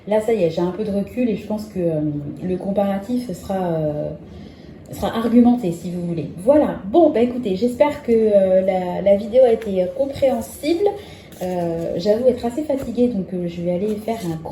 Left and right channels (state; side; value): identical; both; correlation 1.00